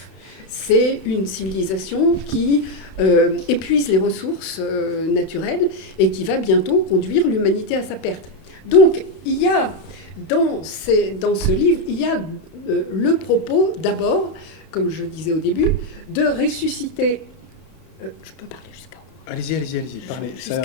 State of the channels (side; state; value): right; late; 31 ms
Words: C'est une civilisation qui épuise les ressources naturelles et qui va bientôt conduire l'humanité à sa perte. Donc, il y a dans ce livre, il y a le propos, d'abord, comme je disais au début, de ressusciter... je peux parler jusqu'à Allez-y, parlez. C'est